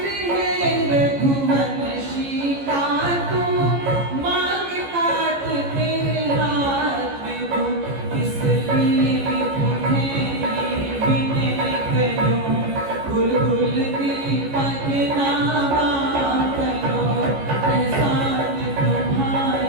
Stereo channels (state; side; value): late; left; 14 ms